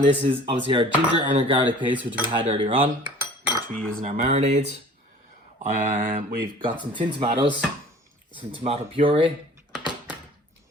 this is obviously our ginger and our garlic paste, which we had earlier on, which we use in our marinades. We've got some tin tomatoes, some tomato puree,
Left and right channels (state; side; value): normal; both; correlation 0.47